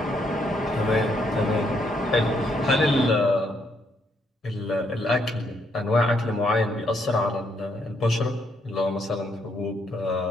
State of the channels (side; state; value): both; normal; correlation 0.73